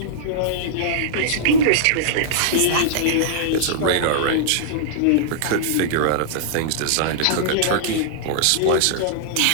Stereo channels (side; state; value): both; different; correlation -0.02